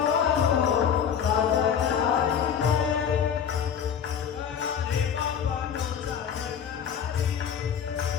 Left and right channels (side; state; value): right; quieter; 8.0 dB